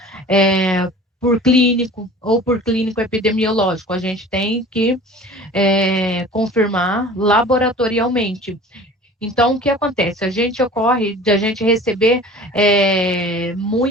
por clínico ou por clínico epidemiológico, a gente tem que confirmar laboratorialmente. Então, o que acontece? A gente receber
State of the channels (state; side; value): normal; both; correlation 0.43